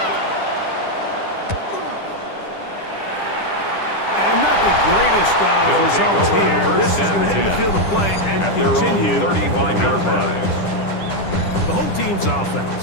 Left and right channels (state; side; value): late; right; 10 ms